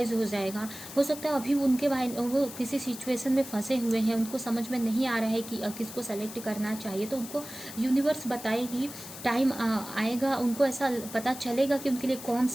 हो जाएगा, हो सकता है अभी उनके वो किसी सिचुएशन में फंसे हुए हैं, उनको समझ में नहीं आ रहा है कि किसको सेलेक्ट करना चाहिए, तो उनको यूनिवर्स बताएगी। टाइम आएगा, उनको ऐसा पता चलेगा कि उनके लिए कौन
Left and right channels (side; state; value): left; noise; hiss, 12 dB below the sound